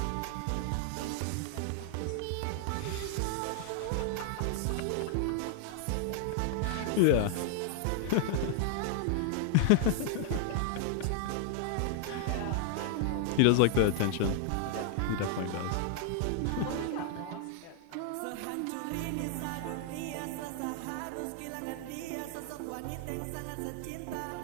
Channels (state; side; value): different; both; correlation 0.00